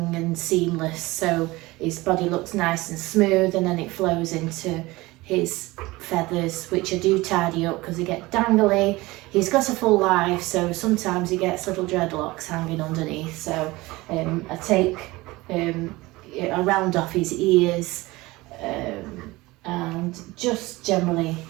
and seamless, so his body looks nice and smooth, and then it flows into his feathers, which I do tidy up because they get dangly. He's got a full life, so sometimes he gets little dreadlocks hanging underneath, so I take a round off his ears, and just generally,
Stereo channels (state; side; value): quieter; left; 20.7 dB